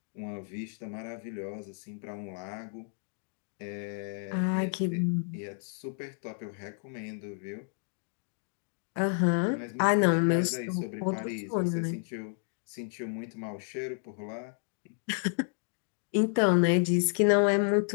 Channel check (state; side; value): silent; right; 57 dB below the other